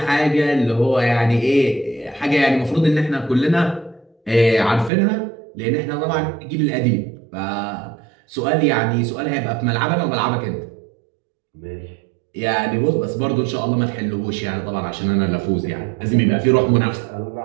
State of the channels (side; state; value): left; drops out; at 4.9 s